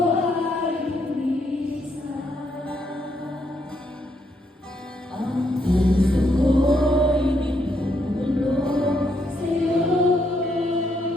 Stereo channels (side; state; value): both; normal; correlation 0.76